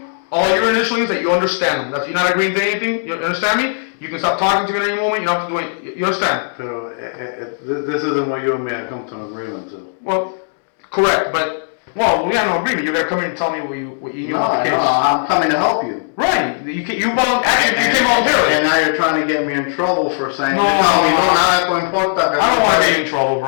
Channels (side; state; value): right; silent; digital silence